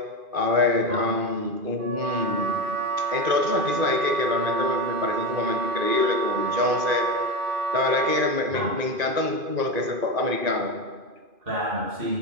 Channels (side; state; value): left; late; 2.5 ms